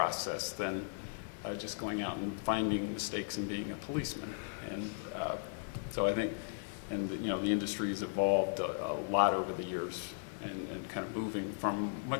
than just going out and finding mistakes and being a policeman. And so I think, the industry has evolved a lot over the years, and kind of moving from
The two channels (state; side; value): silent; right; digital silence